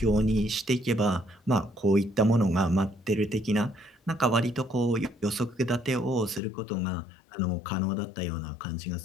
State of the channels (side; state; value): right; drops out; at 6.4 s